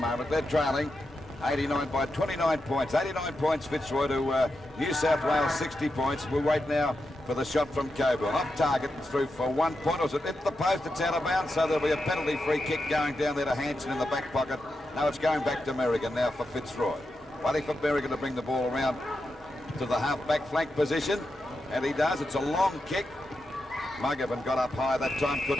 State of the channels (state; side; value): normal; both; correlation 0.88